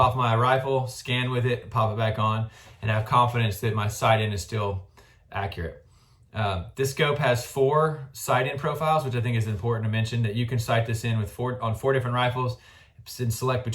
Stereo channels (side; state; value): both; identical; correlation 1.00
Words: my rifle, scan with it, pop it back on, and have confidence that my sight-in is still accurate. This scope has 4 sight-in profiles, which I think is important to mention, that you can sight this in with on 4 different rifles and select